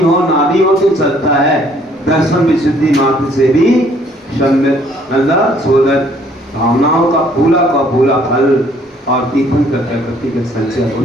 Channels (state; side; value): normal; both; correlation 0.62